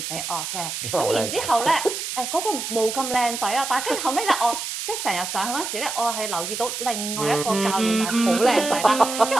俾我嘅，咁然之後咧嗰個冇咁靚仔啊，但係跟住後尾咧我即係成日上去嗰陣時咧，我係留意到另外一個教練係好靚仔啦，跟住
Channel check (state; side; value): noise; right; hiss, 5 dB below the sound